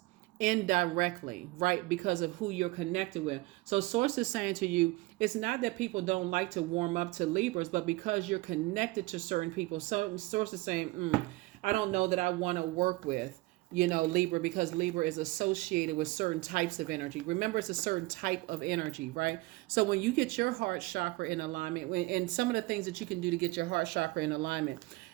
indirectly, right? Because of who you're connected with. So source is saying to you, it's not that people don't like to warm up to Libras, but because you're connected to certain people. Some source is saying, I don't know that I want to work with, Libra, because Libra is associated with certain types of energy. Remember, it's a certain type of energy, right? So when you get your heart chakra in alignment, and some of the things that you can do to get your heart chakra in alignment,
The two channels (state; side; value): quieter; left; 21.7 dB